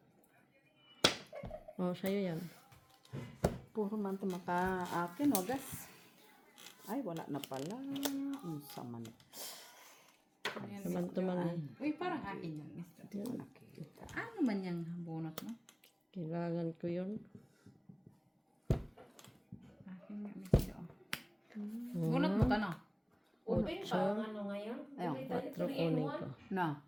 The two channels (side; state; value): both; identical; correlation 1.00